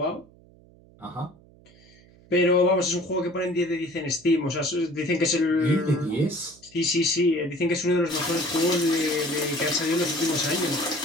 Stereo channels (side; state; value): right; noise; hum, 26 dB below the sound